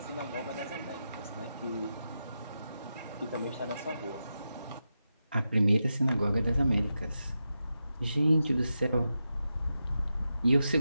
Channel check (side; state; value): both; inverted; correlation -0.89